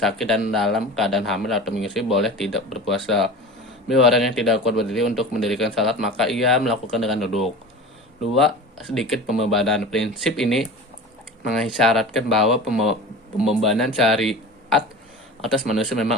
dan dalam keadaan hamil atau menyusui boleh tidak berpuasa. B, orang yang tidak kuat berdiri untuk mendirikan salat maka ia melakukan dengan duduk. 2, sedikit pembebanan. Prinsip ini mengisyaratkan bahwa pembebanan syariat atas manusia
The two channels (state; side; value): normal; both; correlation 0.34